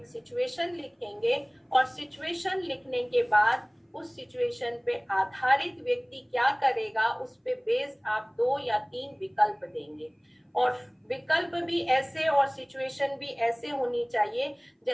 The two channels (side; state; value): both; identical; correlation 1.00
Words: सिचुएशन लिखेंगे, और सिचुएशन लिखने के बाद उस सिचुएशन पे आधारित व्यक्ति क्या करेगा उस पे बेस्ड आप 2 या 3 विकल्प देंगे, और विकल्प भी ऐसे और सिचुएशन भी ऐसे होनी चाहिए